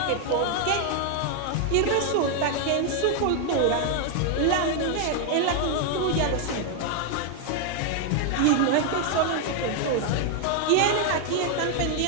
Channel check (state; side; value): different; both; correlation 0.00